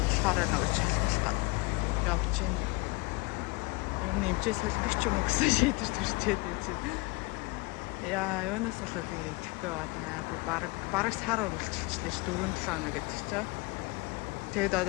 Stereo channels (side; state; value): right; quieter; 25.6 dB